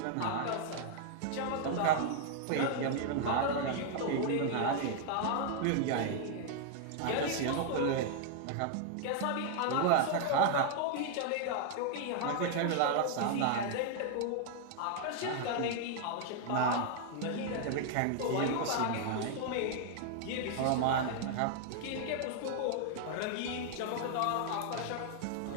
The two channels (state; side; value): different; both; correlation 0.00